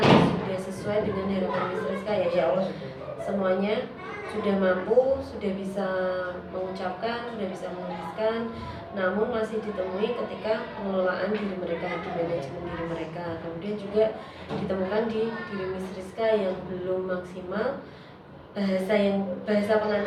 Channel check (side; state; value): both; identical; correlation 1.00